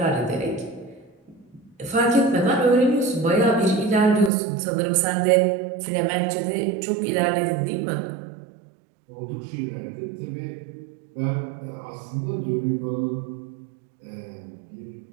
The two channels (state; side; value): drops out; left; at 4.3 s